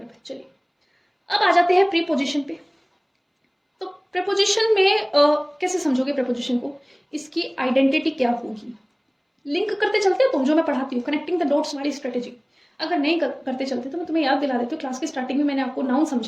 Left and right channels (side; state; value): both; identical; correlation 1.00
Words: चलिए अब आ जाते हैं प्रीपोजिशन पे। तो प्रीपोजिशन में कैसे समझोगे प्रीपोजिशन को? इसकी आइडेंटिटी क्या होगी? लिंक करते चलते हो तुम, जो मैं पढ़ाती हूँ, कनेक्टिंग द डॉट्स वाली स्ट्रेटेजी। अगर नहीं करते चलते तो मैं तुम्हें याद दिला देती हूँ। क्लास की स्टार्टिंग में मैंने आपको नाउन